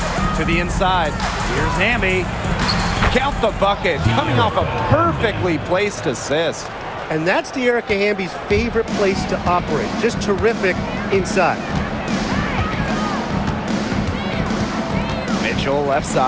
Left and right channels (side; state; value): both; identical; correlation 1.00